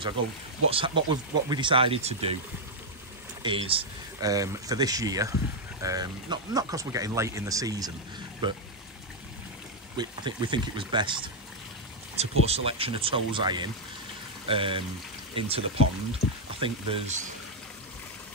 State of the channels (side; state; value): both; normal; correlation -0.02